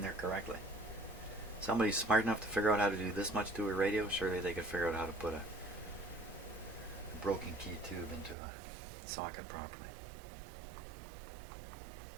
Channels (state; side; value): drops out; left; at 8.3 s